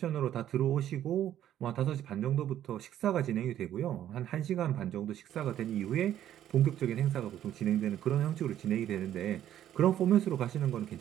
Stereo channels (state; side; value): quieter; left; 11.4 dB